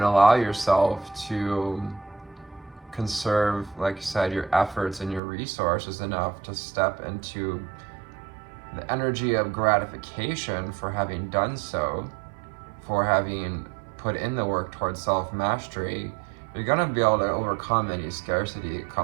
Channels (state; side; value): drops out; left; at 5.2 s